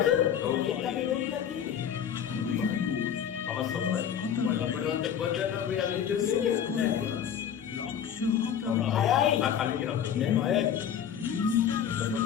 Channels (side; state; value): right; quieter; 8.8 dB